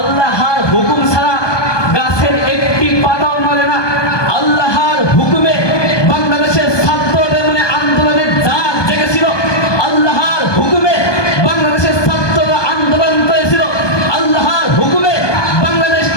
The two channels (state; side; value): late; right; 1.2 ms